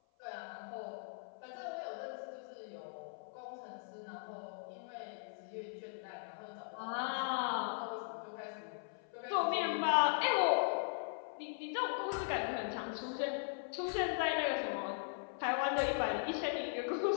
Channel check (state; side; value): silent; right; 52 dB below the other